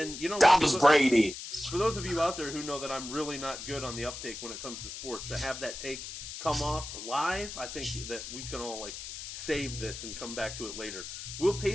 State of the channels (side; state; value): left; noise; hiss, 9 dB below the sound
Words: that was Brady. For those of you out there who know that I'm really not good on the uptake when it comes to sports, to have that take come off live, I think that we can all save this and come back to it later. Will